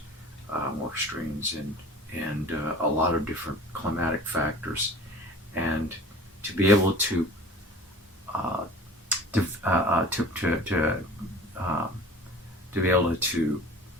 more extremes in a lot of different climatic factors. And to be able to be able to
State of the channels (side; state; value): both; normal; correlation 0.42